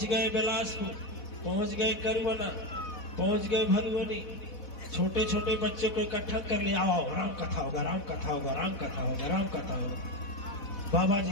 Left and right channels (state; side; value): late; right; 4.1 ms